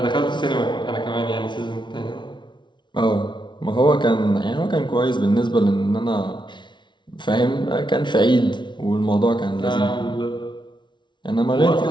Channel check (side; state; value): right; late; 0.23 ms